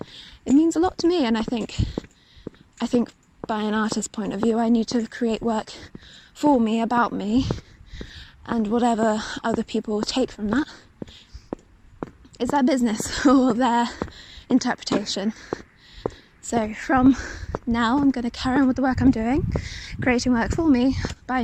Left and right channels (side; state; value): both; identical; correlation 1.00